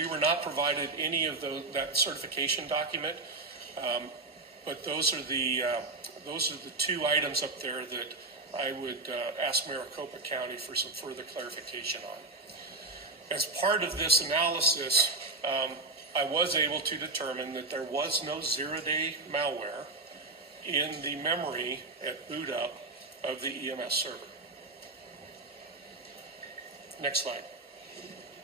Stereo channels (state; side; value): quieter; left; 3.2 dB